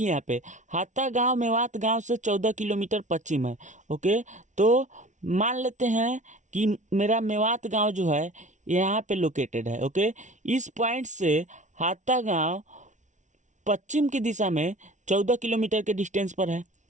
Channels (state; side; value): late; left; 0.36 ms